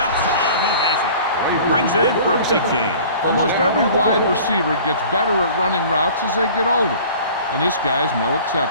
and he has it. He brings it in for a big game. Almost every wide receiver gets better at running routes as they get older, and this guy's no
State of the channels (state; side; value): inverted; both; correlation -0.45